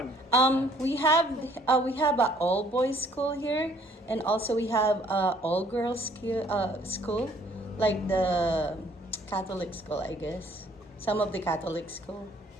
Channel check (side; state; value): both; normal; correlation 0.60